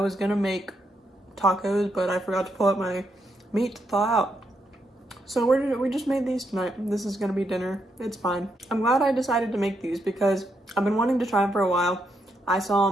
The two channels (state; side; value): normal; both; correlation 0.80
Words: gonna make tacos, but I forgot to pull out my meat to thaw out. So we just made these tonight. This is gonna be dinner. It's fine. I'm glad I decided to make these because I've been wanting to try them for a while. I saw